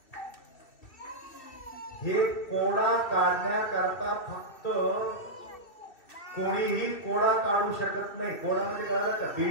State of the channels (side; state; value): right; late; 2.6 ms